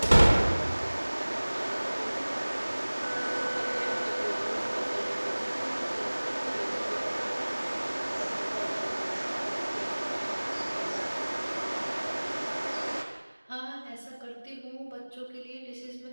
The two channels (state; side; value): inverted; both; correlation -1.00